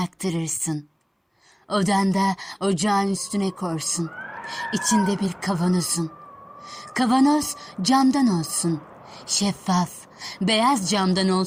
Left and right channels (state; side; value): identical; both; correlation 1.00